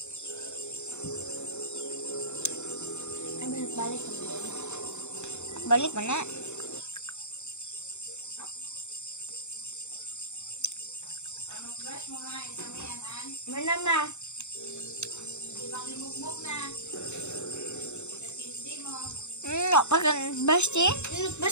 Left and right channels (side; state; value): right; late; 0.82 ms